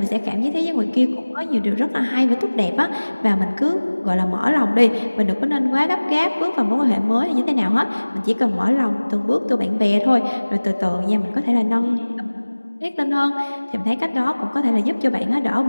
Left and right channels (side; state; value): both; inverted; correlation -1.00